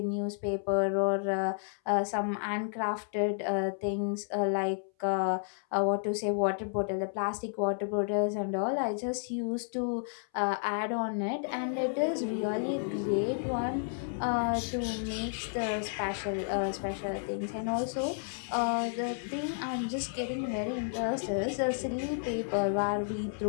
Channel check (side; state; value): right; silent; 57 dB below the other